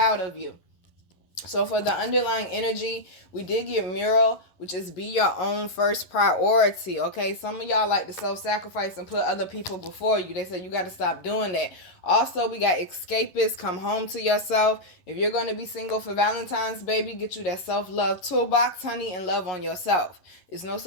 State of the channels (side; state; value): right; late; 11 ms